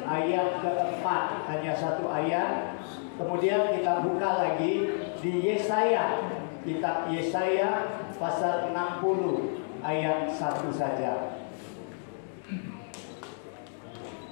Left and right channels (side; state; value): right; silent; digital silence